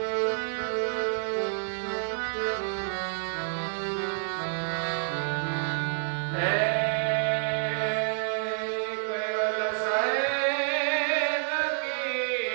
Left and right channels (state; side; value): silent; left; digital silence